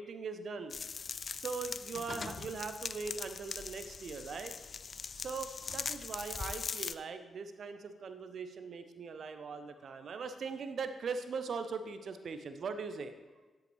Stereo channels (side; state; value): both; normal; correlation 0.78